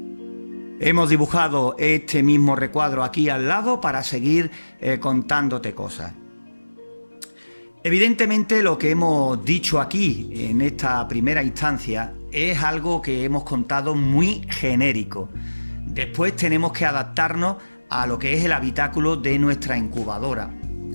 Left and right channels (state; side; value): inverted; both; correlation -1.00